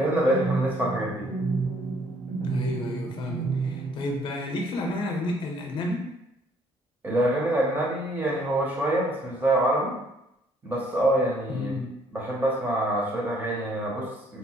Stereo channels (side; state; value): both; normal; correlation 0.63